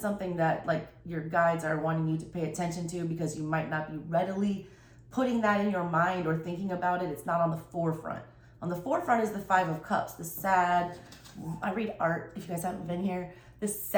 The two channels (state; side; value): identical; both; correlation 1.00